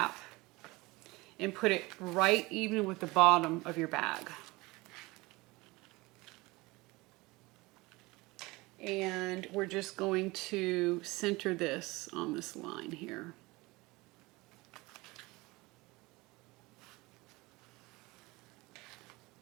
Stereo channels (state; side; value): quieter; left; 22.5 dB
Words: and put it right even with the bottom of your bag. And we're just going to center this on this line here.